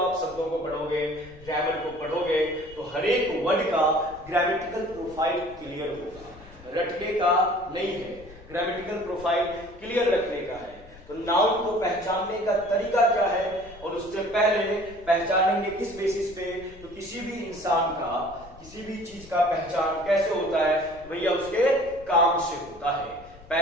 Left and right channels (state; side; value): noise; left; rumble, 20 dB below the sound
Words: शब्दों को पढ़ोगे, ग्रामर को पढ़ोगे, तो हर एक वर्ड का ग्रामेटिकल प्रोफाइल क्लियर होगा। रटने का नहीं है, ग्रामेटिकल प्रोफाइल क्लियर रखने का है। तो नाउन को पहचानने का तरीका क्या है, और उससे पहले पहचानेंगे किस बेसिस पे? तो किसी भी इंसान का, किसी भी चीज का पहचान कैसे होता है? भैया उसके काम से होता है,